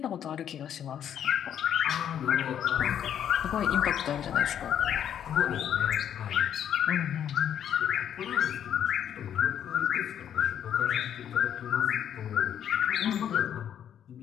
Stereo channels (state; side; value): quieter; right; 9.5 dB